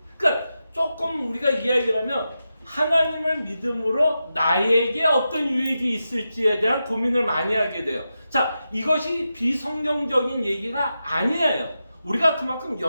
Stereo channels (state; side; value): inverted; both; correlation -0.89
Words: 그러니까 조금 우리가 이야기를 하면 하나님을 믿음으로 나에게 어떤 유익이 있을지에 대한 고민을 많이 하게 돼요. 자, 이것이 비성경적인 얘기가 아니에요. 우리가 그만큼